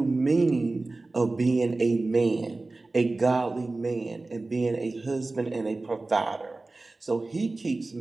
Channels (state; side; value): quieter; left; 3.2 dB